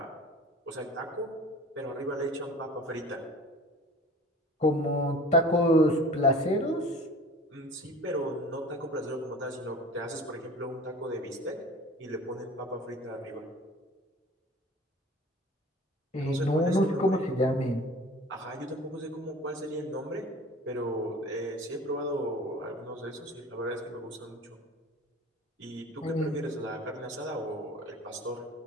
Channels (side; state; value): both; normal; correlation 0.42